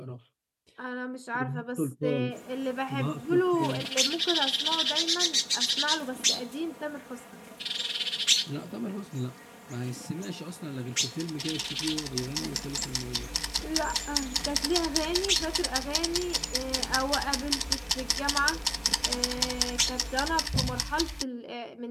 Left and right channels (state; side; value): identical; both; correlation 1.00